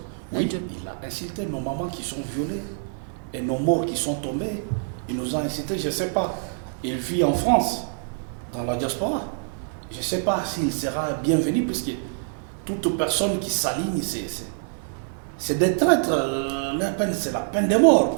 Oui, il a insulté nos mamans qui sont violées et nos morts qui sont tombés. Il nous a insulté, je ne sais pas. Il vit en France, dans la diaspora. Je ne sais pas s'il sera bienvenu, puisque toute personne qui s'aligne, c'est des traîtres. La peine, c'est la peine de mort,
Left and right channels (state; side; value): silent; left; 61 dB below the other